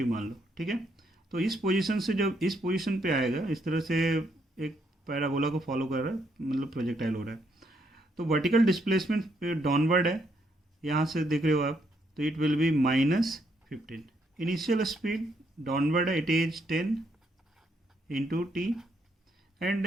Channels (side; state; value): both; normal; correlation 0.74